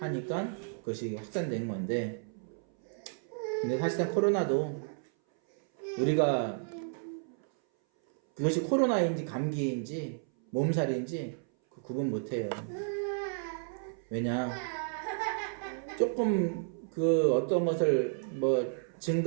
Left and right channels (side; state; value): left; silent; 56 dB below the other